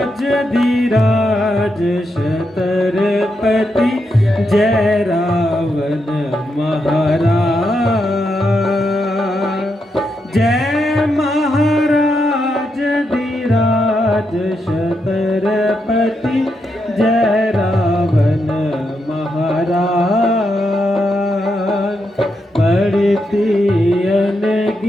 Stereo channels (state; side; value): normal; both; correlation 0.83